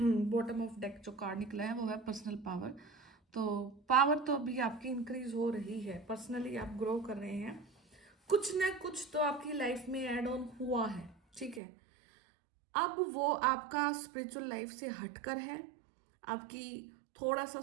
बॉटम ऑफ डेक जो कार्ड निकला है वो है पर्सनल पावर। तो पावर तो अभी आपकी इंक्रीज हो रही है, पर्सनली आप ग्रो कर रहे हैं, कुछ ना कुछ तो आपकी लाइफ में ऐड ऑन हुआ है, ठीक है। अब वो आपका स्पिरिचुअल लाइफ से हटकर है, आपकी थोड़ा सा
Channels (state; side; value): drops out; left; at 11.6 s